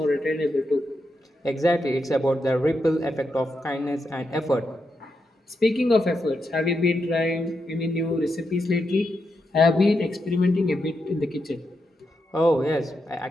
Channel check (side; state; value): both; normal; correlation 0.85